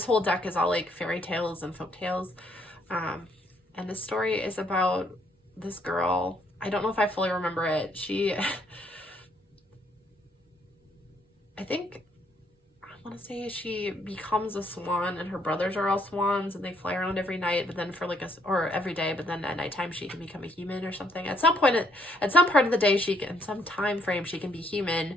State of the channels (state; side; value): normal; both; correlation 0.69